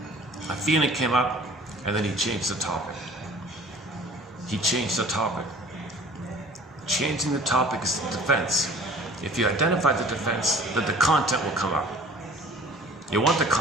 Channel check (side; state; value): both; normal; correlation 0.48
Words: A feeling came up, and then he changed the topic. He changed the topic. Changing the topic is the defense. If you identify the defense, then the content will come up. You want the